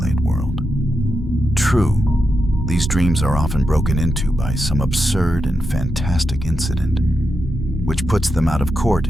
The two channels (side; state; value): both; normal; correlation 0.86